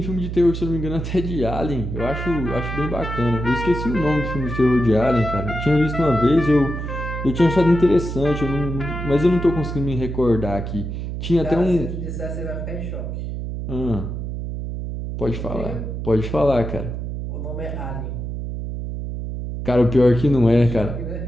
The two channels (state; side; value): noise; right; hum, 5 dB below the sound